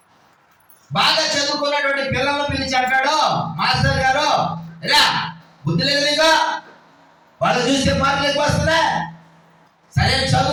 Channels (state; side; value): identical; both; correlation 1.00